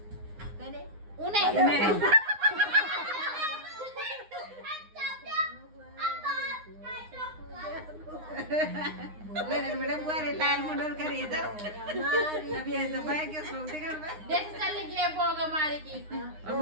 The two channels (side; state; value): left; late; 9.7 ms